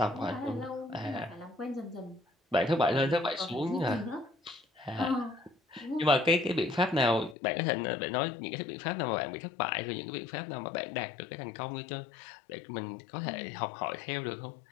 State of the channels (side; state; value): right; drops out; at 7.4 s